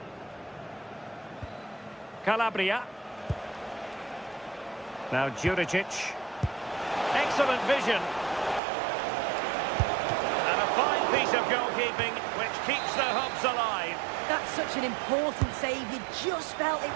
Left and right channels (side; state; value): left; drops out; at 8.6 s